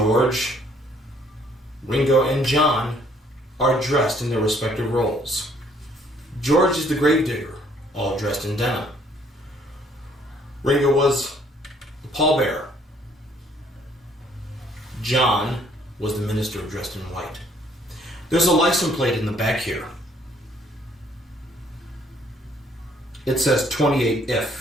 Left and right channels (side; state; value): both; normal; correlation 0.63